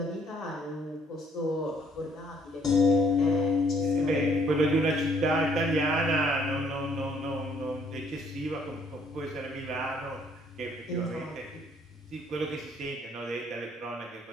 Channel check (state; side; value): normal; both; correlation 0.64